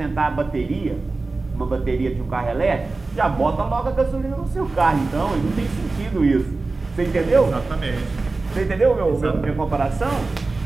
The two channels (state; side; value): quieter; left; 3.6 dB